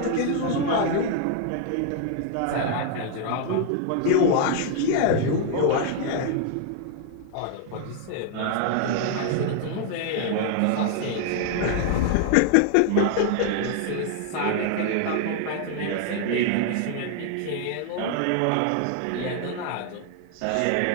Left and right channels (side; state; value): both; different; correlation 0.00